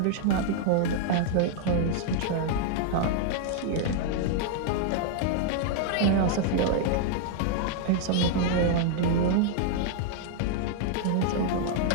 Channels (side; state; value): both; different; correlation 0.00